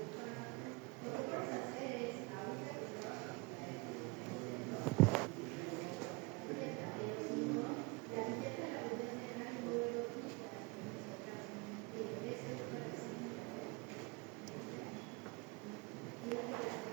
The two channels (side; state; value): left; quieter; 26.0 dB